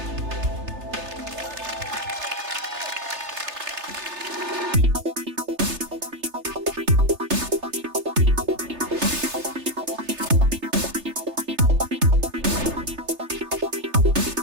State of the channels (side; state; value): left; late; 3.3 ms